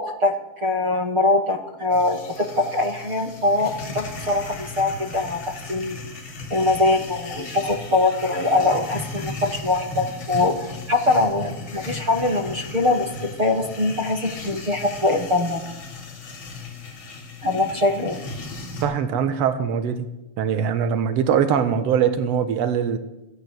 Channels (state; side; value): late; left; 6.6 ms